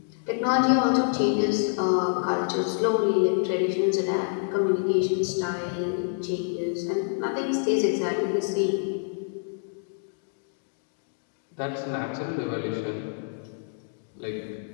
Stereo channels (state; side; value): silent; right; digital silence